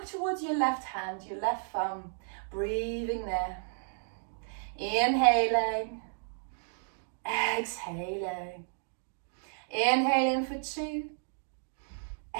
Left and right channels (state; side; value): silent; left; digital silence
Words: towards your left hand, your left thumb. Breathing there. Inhaling. Exhaling. Inhaling for 2.